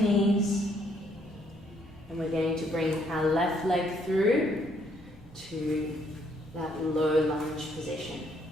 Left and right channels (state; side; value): normal; both; correlation 0.69